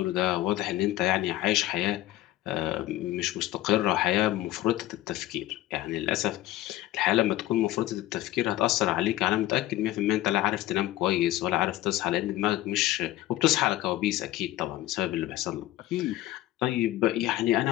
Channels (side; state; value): right; quieter; 15.4 dB